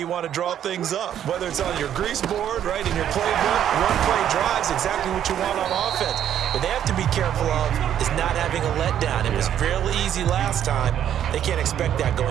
want to draw things up. Whether it's on your grease board, right, in your playbook, one play drive is exactly what you want on offense. What they have to be careful of is not having a letdown. It was fairly easy last time. They can't expect that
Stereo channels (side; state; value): left; quieter; 10.2 dB